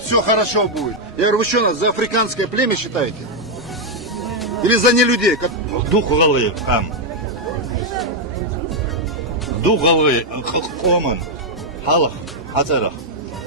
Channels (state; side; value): normal; both; correlation 0.00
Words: все хорошо будет. Я говорю, вы что нас за африканское племя считаете? Или за нелюдей? Духовые хам. Духовые хомам. Халах, хацарах.